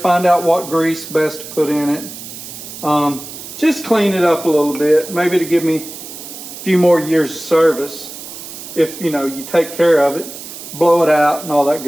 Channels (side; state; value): right; noise; hiss, 12 dB below the sound